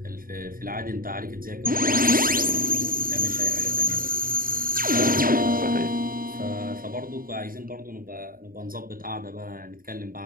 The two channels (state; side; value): late; left; 0.41 ms